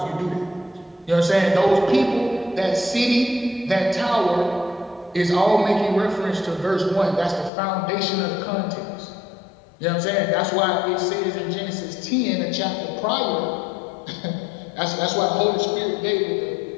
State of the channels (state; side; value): drops out; right; at 7.5 s